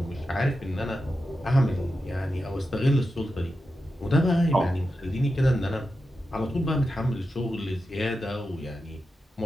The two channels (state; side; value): normal; both; correlation 0.90